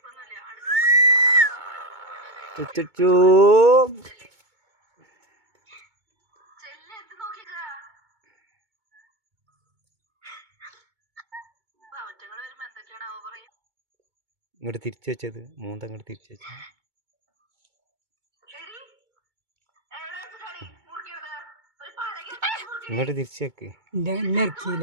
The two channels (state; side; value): late; left; 2.2 ms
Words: ചുച്ചു ഇങ്ങോട്ട് തിരിച്ചു വെച്ചത്, മൂന്തങ്ങോട്ട് തിരിച്ചു വെച്ചത്. ഇങ്ങോട്ട് തിരിച്ചു വെക്ക്.